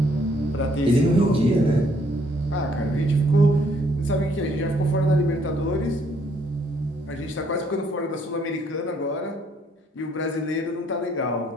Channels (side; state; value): both; normal; correlation 0.67